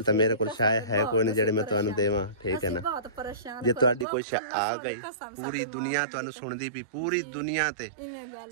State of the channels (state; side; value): drops out; left; at 4.0 s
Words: ਤਾਂ ਮੇਰੇ ਕੋਲ ਸ਼ਾਇਦ ਹੈ ਕੋਈ ਨਹੀਂ ਜਿਹੜੇ ਮੈਂ ਤੁਹਾਨੂੰ ਦੇਵਾਂ, ਠੀਕ ਹੈ ਨਾ। ਬਹੁਤ ਪਰੇਸ਼ਾਨ ਜੇ ਤੁਹਾਡੀ ਕੋਈ ਆ ਗਈ ਪੂਰੀ ਦੁਨੀਆ ਤੁਹਾਨੂੰ ਸੁਣਦੀ ਪਈ, ਪੂਰੀ ਦੁਨੀਆ ਤੇ